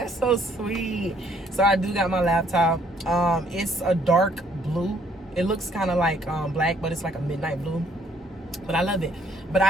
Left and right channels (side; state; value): both; normal; correlation 0.65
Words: so sweet. So I do got my laptop. It's a dark blue. It looks kind of like black, but it's like a midnight blue. But I love it. But